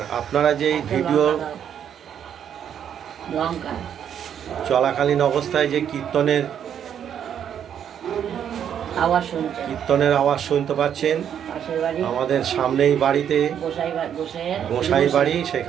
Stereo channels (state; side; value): quieter; left; 9.0 dB